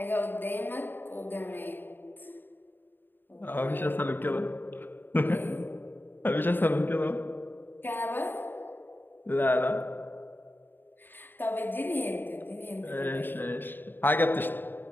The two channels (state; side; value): late; right; 0.094 ms